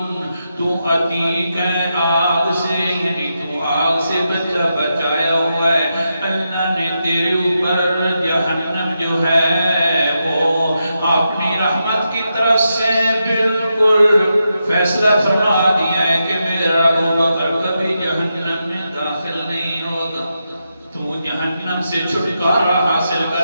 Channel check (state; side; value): inverted; both; correlation -0.86